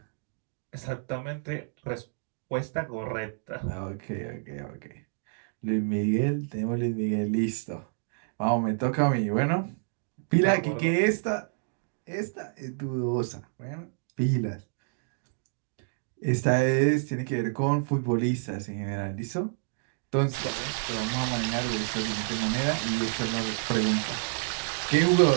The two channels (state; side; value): silent; left; digital silence